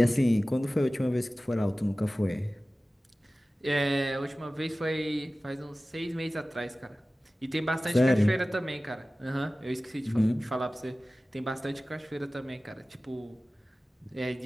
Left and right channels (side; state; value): both; normal; correlation 0.97